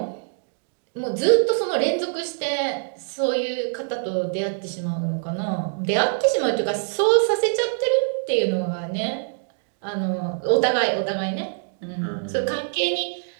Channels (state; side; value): silent; left; digital silence